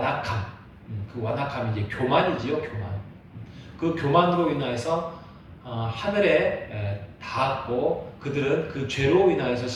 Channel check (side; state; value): both; identical; correlation 1.00